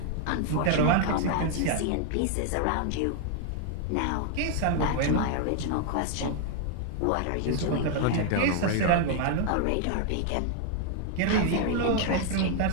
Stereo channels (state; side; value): different; both; correlation 0.00